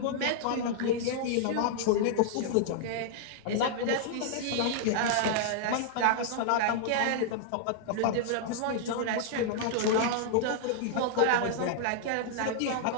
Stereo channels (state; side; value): different; both; correlation -0.01